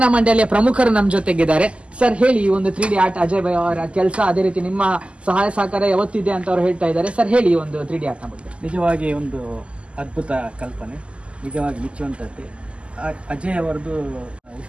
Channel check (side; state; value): left; late; 0.055 ms